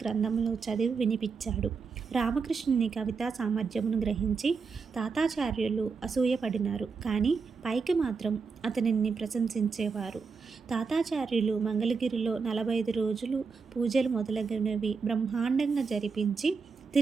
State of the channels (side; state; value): left; quieter; 5.1 dB